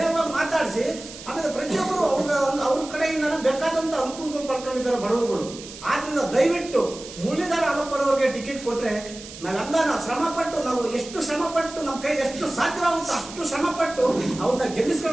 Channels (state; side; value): noise; right; hiss, 15 dB below the sound